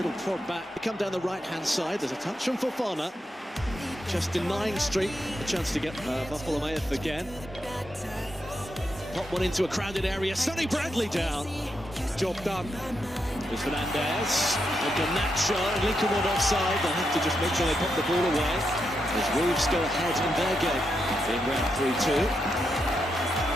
prod back. They come down the right-hand side. There's a touch from Fofana. Just denying Street a chance to get Bartholomew again. Pop one into a crowded area. Sonny Bradley down. Job done. There's Fernandez. And Garnacho and Lincoln one offside. They'll have to just make sure they pop the ball away. As Wolves go ahead in their game in round 3-2.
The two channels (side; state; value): both; normal; correlation 0.84